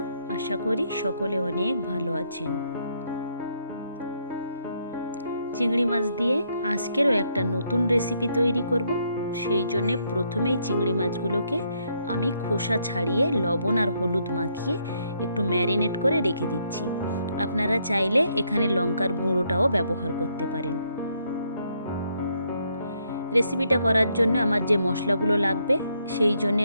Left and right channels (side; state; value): both; inverted; correlation -0.73